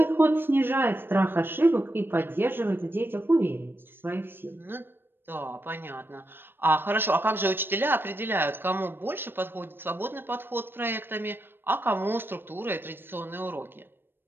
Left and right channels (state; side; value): late; left; 0.099 ms